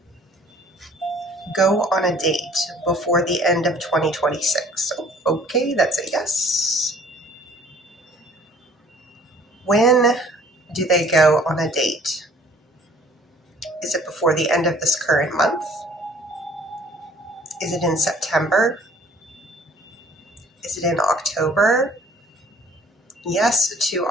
go on a date before the end of 2026? Okay, that's a yes. When do they go on a date? Is it before the end of this current month? Is it in September? Is it in October? Yes to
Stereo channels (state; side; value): normal; both; correlation 0.54